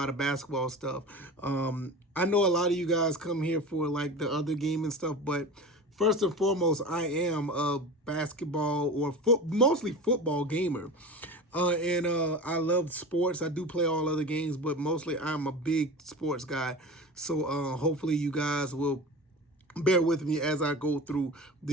of basketball stuff. I know a lot of you guys come here for like the other game and stuff, but first and foremost, I am a basketball or mostly football gamer. And I love sports. I do play all other games, but mostly I'm a big sports guy. So hopefully you guys will bear with me as I go through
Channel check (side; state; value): both; normal; correlation 0.32